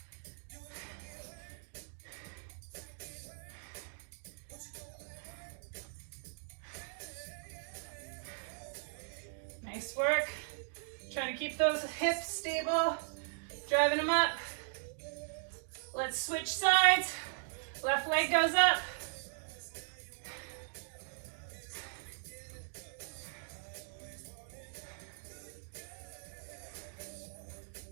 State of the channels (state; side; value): silent; left; digital silence